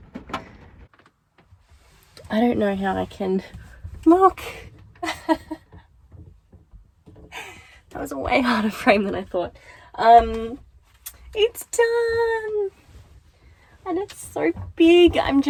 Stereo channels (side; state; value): both; identical; correlation 1.00